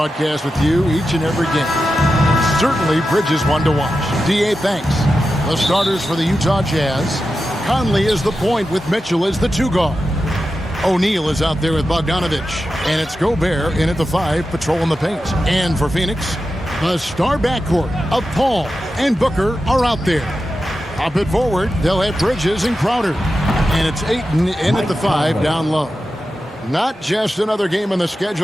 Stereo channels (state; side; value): normal; both; correlation 0.91